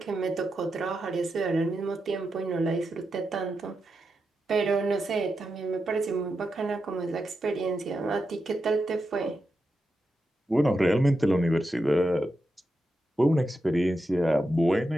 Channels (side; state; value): both; normal; correlation 0.88